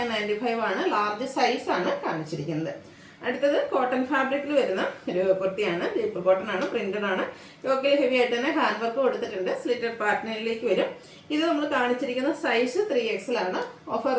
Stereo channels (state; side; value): identical; both; correlation 1.00